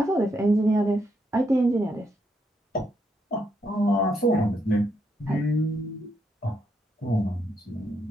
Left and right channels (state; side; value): normal; both; correlation 0.78